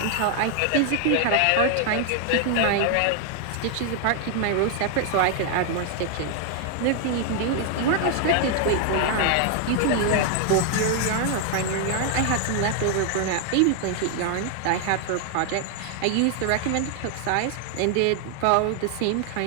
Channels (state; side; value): different; both; correlation 0.00